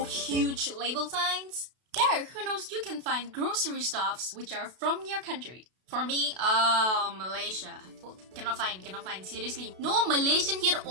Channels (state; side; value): late; left; 32 ms